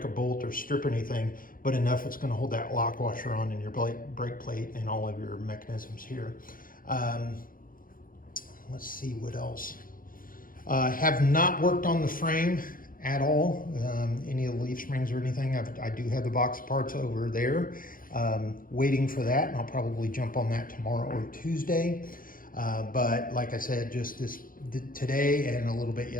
a bolt or strip anything, but enough it's going to hold that lock washer on in your brake plate and all of your mechanisms here. Let's see what else. Have not worked on the frame at all, any of the leaf springs or anything. I do have the box of parts over there, waiting for that, and I'll probably jump on that tomorrow or Tuesday. But like I said, just today and a little bit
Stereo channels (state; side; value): late; right; 0.41 ms